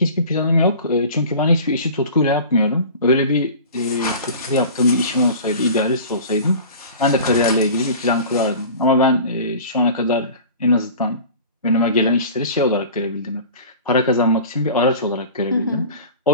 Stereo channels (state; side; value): inverted; both; correlation -0.39